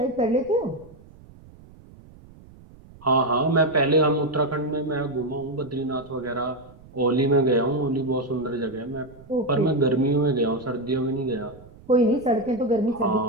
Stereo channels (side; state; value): right; noise; rumble, 22 dB below the sound